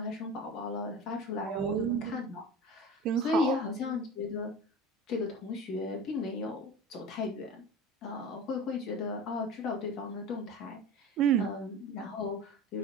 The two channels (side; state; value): both; normal; correlation 0.33